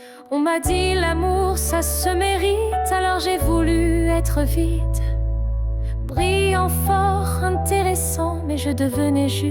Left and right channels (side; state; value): both; identical; correlation 1.00